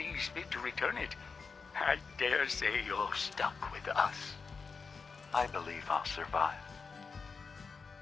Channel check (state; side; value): quieter; right; 5.0 dB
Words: fit to return it, I dare say you're stuck with us. I believe I'll survive.